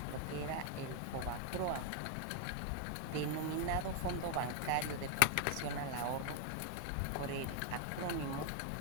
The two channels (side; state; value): both; different; correlation 0.00